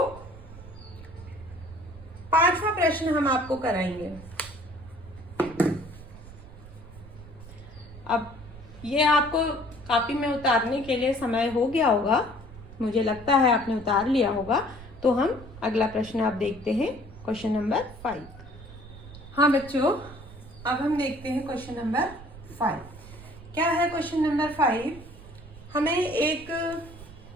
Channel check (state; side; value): noise; right; rumble, 17 dB below the sound